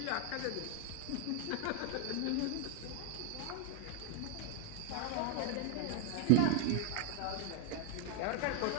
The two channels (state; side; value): different; both; correlation 0.01